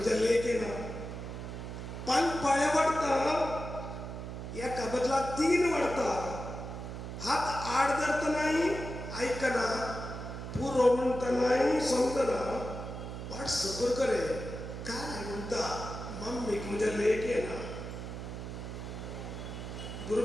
लेख येना 5 पाळ्या वाडटा एका बदलाक 3 वाडटा हात आड धरतनाय आयकना पुरो म्हणटनाय समजना वाट सबर करे काय म्हणटा मम्मीक म्हज्या लेख येना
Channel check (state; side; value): noise; right; hum, 8 dB below the sound